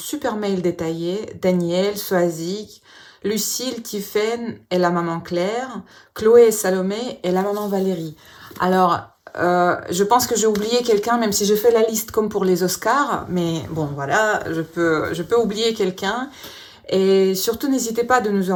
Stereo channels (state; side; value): identical; both; correlation 1.00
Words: mail détaillé, Daniel, Soazic, Lucille, Tiffaine et la maman Claire, Chloé et Salomé et la maman Valérie. Alors, je pense que j'ai oublié quelqu'un, même si j'ai fait la liste comme pour les Oscars, mais bon, voilà, je peux oublier quelqu'un. Et surtout, n'hésitez pas de nous